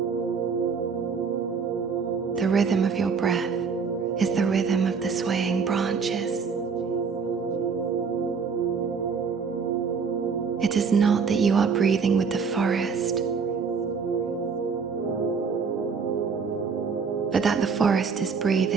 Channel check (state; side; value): quieter; left; 5.6 dB